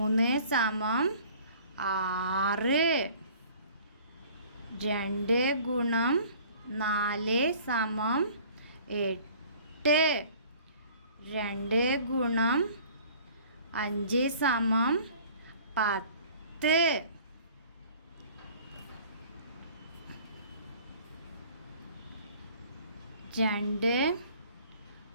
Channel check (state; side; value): inverted; both; correlation -0.50